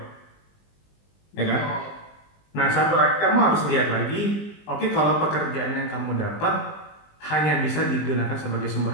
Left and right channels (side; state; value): right; late; 20 ms